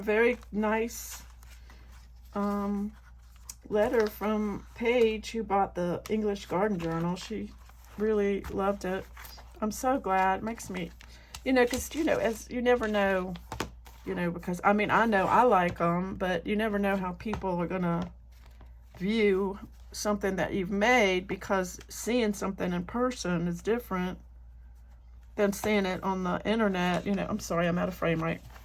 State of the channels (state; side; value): identical; both; correlation 1.00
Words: nice letter from Paige, who bought the English Garden Journal. She really loved it. I'm so glad. It makes me, you know, because, you know, as you never know, you know, because, I mean, I know I like them, but you never know how people are going to view something that you've made, because seeing something in person is different than seeing it on the internet. You know, I'm sorry, I'm out of frame, right?